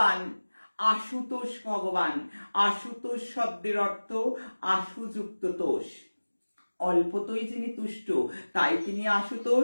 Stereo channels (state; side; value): inverted; both; correlation -1.00